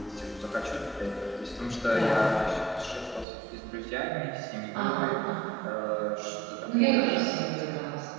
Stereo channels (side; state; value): left; drops out; at 3.2 s